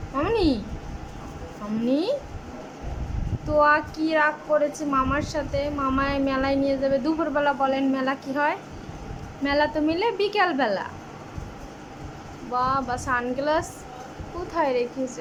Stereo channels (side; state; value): both; identical; correlation 1.00